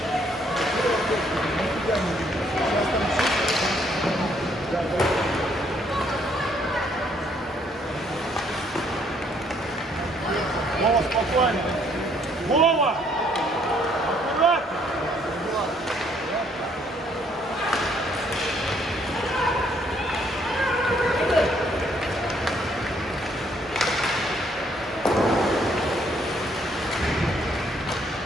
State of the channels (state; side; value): normal; both; correlation 0.67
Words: Вова, спокойно. Вова! Аккуратно!